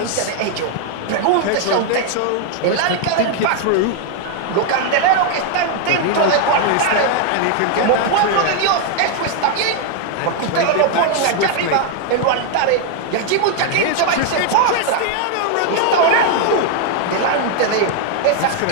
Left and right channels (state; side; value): different; both; correlation 0.00